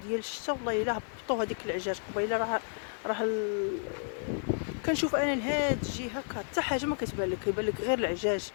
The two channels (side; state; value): right; silent; 57 dB below the other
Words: ديال الشتا والله الا هبطوا هذيك العجاج قبيله. راه كنشوف انا لهاد الجهه حتى حاجه ما كتبان لك، كيبان لك غير العجاج.